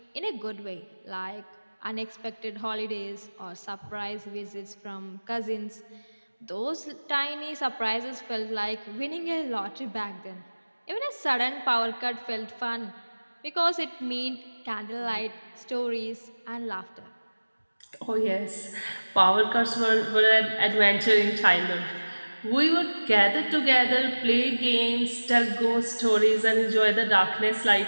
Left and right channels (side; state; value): both; inverted; correlation -1.00